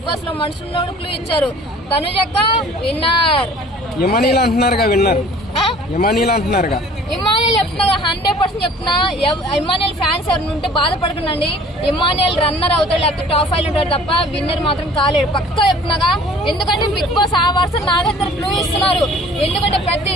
బాస్ లో మనుషులు క్లూ ఇచ్చారు. తనుజక్క విన్నర్. ఇమానియల్ అంటున్నారుగా విన్నర్. ఇమానియల్ అంటున్నారుగా. ఇమానియల్ చెప్తున్నా 100% చెప్తున్నా. ఇమానియల్ ఫ్యాన్స్ ఎవరు ఉంటే బాధపడకండి. ఇమానియల్ రన్నర్ అవుతాడు లేకపోతే టాప్ 5 ఉంటాడు తప్ప విన్నర్ మాత్రం కాలేడు. పక్కా చెప్తున్నాగా. ఎందుకంటే బిగ్ బాస్ ఆ వర్షం నా దగ్గర క్లూ ఇస్తున్నారు. ఎందుకంటే ప్రతి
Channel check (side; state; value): both; normal; correlation 0.50